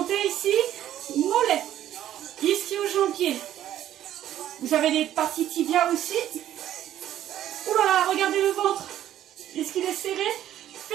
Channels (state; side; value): quieter; left; 11.9 dB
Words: ici. Mollet. Ischio-jambier. Vous avez des parties tibia aussi. Ouh là là, regardez le ventre. Est-ce qu'il est serré?